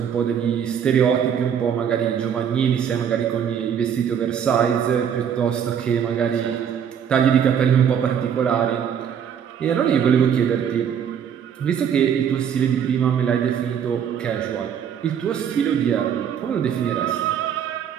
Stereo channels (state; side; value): quieter; left; 8.2 dB